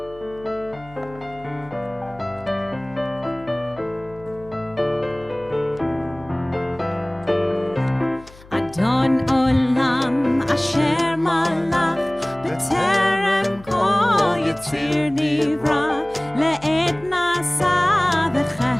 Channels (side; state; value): left; noise; hum, 22 dB below the sound